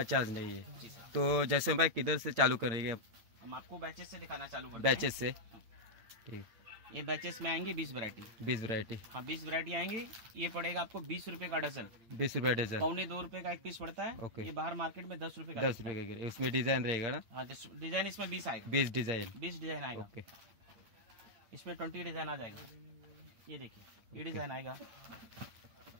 चार्ज नहीं है। जी सर। तो जैसे भाई किधर से चालू करेंगे? हम आपको बैचेस से दिखाना चालू करते हैं। बैचेस से? ठीक। ये बैचेस में आएंगे 20 वैरायटी। 20 वैरायटी? हाँ, 20 वैरायटी आएंगी। ये पड़ेगा आपको 20 रुपए का डजन। 20 रुपए डजन? 1.25 रुपए का एक पीस पड़ता है। ओके। ये बाहर मार्केट में 10 रुपए का। 10 रुपए का? उसमें डिजाइन रहेगा ना? हाँ, डिजाइन इसमें 20 आएगा। 20 डिजाइन? 20 डिजाइन आएगा। ओके। इसमें 20 डिजाइन आ जाएगा। ये देखिए, ये डिजाइन आएगा,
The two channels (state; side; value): late; left; 8.7 ms